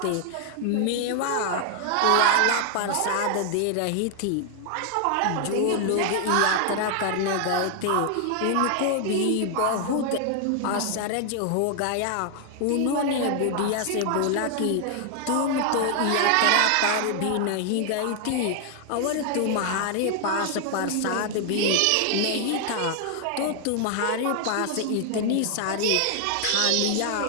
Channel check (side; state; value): both; different; correlation 0.00